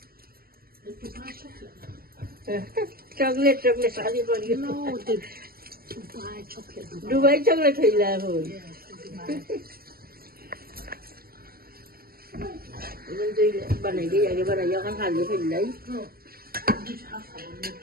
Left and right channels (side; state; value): left; late; 0.44 ms